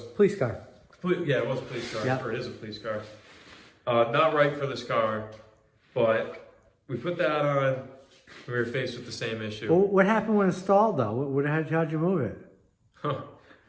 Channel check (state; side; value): identical; both; correlation 1.00